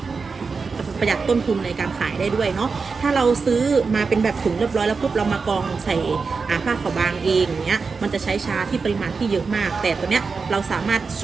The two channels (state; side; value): quieter; left; 4.8 dB